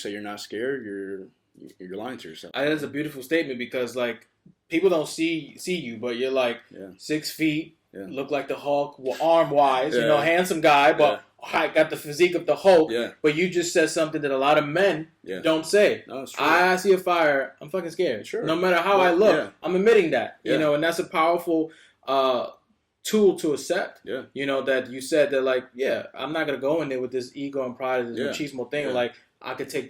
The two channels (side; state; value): both; identical; correlation 1.00